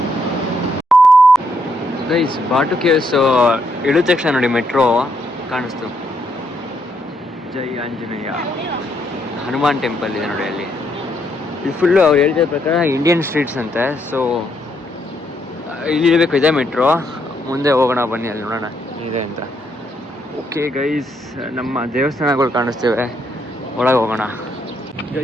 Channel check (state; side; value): normal; both; correlation 0.75